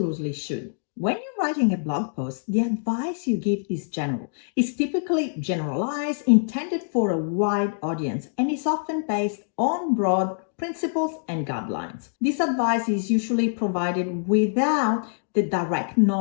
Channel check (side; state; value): right; silent; digital silence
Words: should. When you're writing a blog post, the advice you give is general. It's typically generalized, intended for a wide audience, and is often based on broad principles and guidelines. This advice is usually provided without the direct